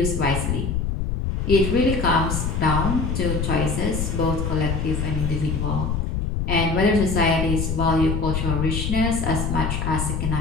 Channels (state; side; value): noise; left; rumble, 1 dB below the sound